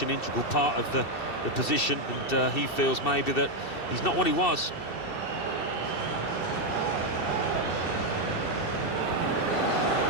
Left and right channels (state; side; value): late; right; 2.7 ms